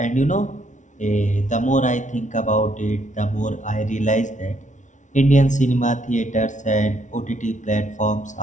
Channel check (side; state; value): right; late; 0.36 ms